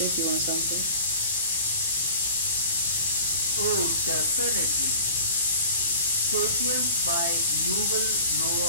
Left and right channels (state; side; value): inverted; both; correlation -0.42